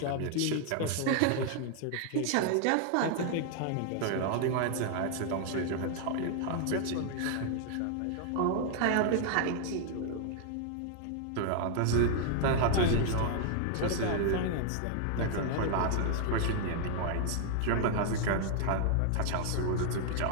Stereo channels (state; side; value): different; both; correlation 0.00